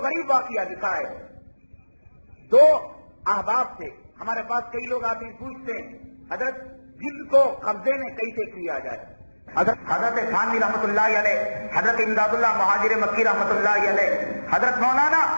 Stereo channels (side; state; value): both; inverted; correlation -1.00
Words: غریب واقعہ لکھا ہے. 2 احباب تھے. ہمارے پاس کئی لوگ آتے ہیں پوچھتے ہیں حضرت جن کو قبضے میں کیسے کیا جائے. حضرت تھانوی رحمت اللہ علیہ, حضرت امداد اللہ مہاجر مکی رحمت اللہ علیہ, حضرت مولانا